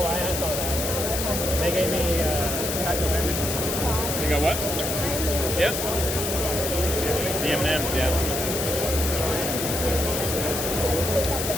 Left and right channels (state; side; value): noise; left; hiss, 3 dB below the sound